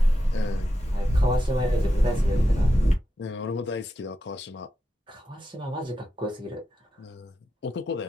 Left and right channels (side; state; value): both; normal; correlation 0.89